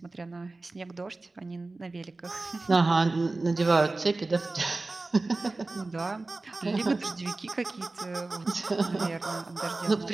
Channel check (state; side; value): quieter; left; 3.3 dB